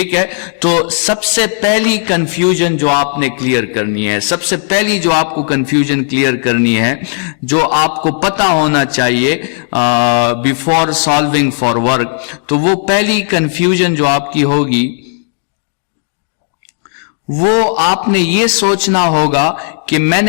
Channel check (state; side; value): silent; right; 71 dB below the other